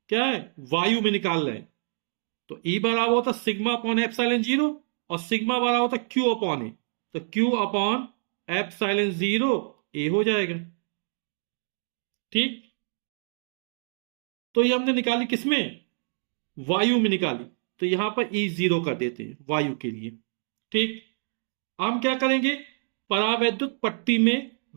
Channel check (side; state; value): left; silent; digital silence